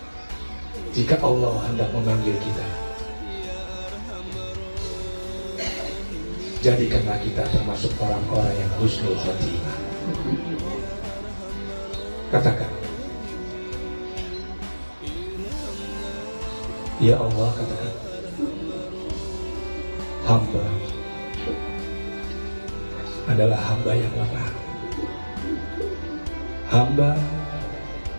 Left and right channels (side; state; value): both; inverted; correlation -1.00